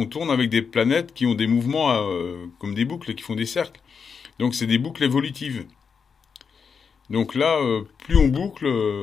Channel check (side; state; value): right; quieter; 6.0 dB